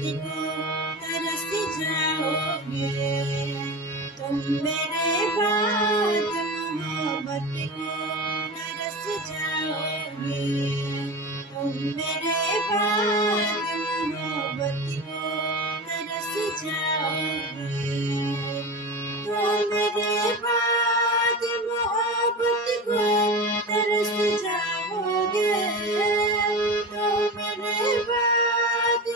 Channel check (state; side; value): normal; both; correlation 0.27